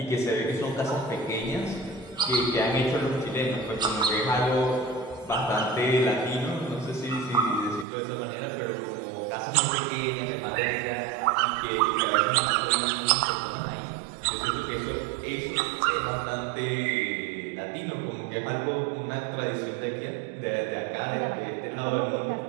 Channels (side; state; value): left; drops out; at 7.9 s